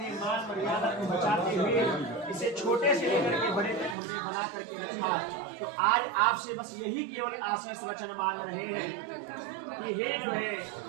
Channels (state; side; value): drops out; left; at 4.0 s